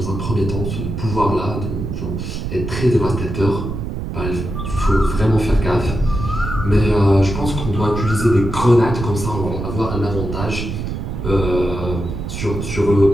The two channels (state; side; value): noise; right; rumble, 5 dB below the sound